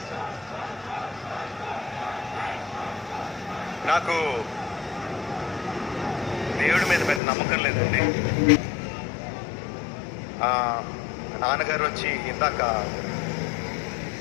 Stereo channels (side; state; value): right; drops out; at 7.2 s